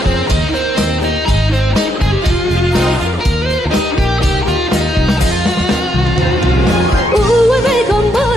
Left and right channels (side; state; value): both; normal; correlation 0.76